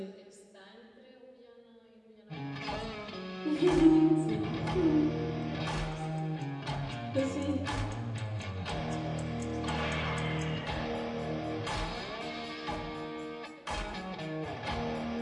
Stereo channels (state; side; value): identical; both; correlation 1.00